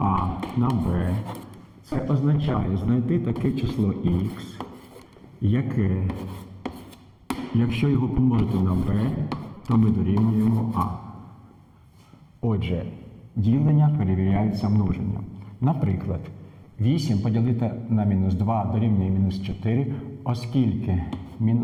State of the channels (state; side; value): identical; both; correlation 1.00